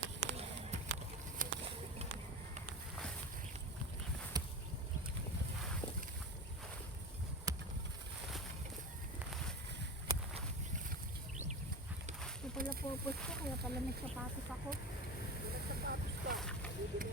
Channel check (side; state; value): both; normal; correlation 0.27